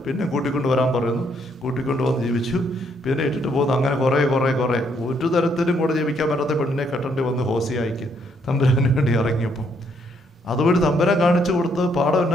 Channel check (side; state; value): both; normal; correlation 0.71